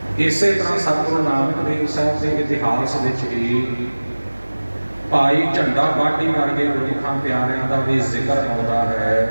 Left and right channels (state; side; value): inverted; both; correlation -1.00